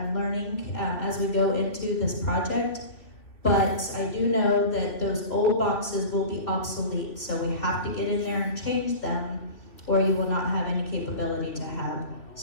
learning as we go into this project, but I do know that those old boxes will be obsolete. So we have to get in there and change them, or you will not have any capability to have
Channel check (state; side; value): late; right; 2.9 ms